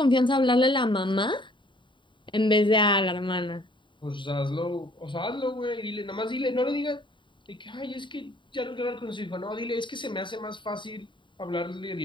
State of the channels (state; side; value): late; right; 0.23 ms